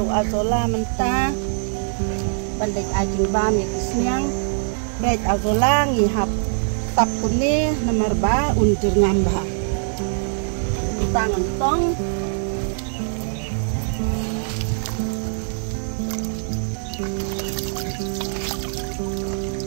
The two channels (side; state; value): left; silent; digital silence